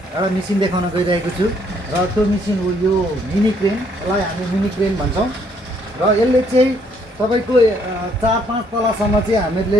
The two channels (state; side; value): normal; both; correlation 0.67